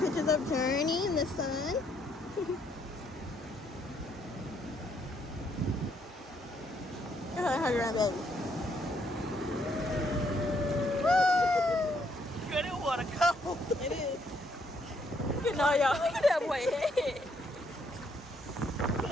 of Journee in the sun. Go ahead, hug around, baby. Girl, that water cold. It is. You know, y'all. Look at that boy head.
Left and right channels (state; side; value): normal; both; correlation 0.71